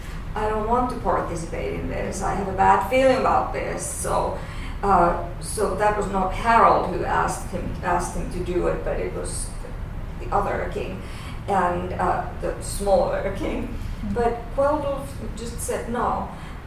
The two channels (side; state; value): both; identical; correlation 1.00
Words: I don't want to participate in this. I have a bad feeling about this. So that was not Harold who asked him to do it, but it was the other king and the smaller king. But Kveldulf just said no,